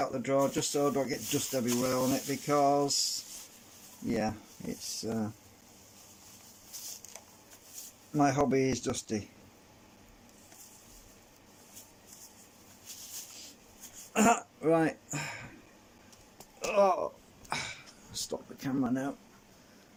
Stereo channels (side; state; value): both; identical; correlation 1.00